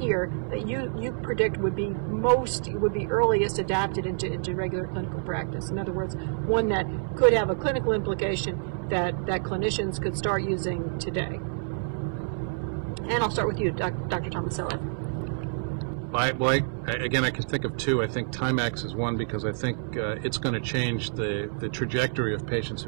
that you predict would be earliest adapted into regular clinical practice? In other words, one that could have a clinical implication that clinicians could start using today. And I'll start with you, Dr. Tomaselli. Again, I can think of two. I think Timax is one because I think it's going to change the trajectory of patients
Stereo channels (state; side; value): silent; left; 60 dB below the other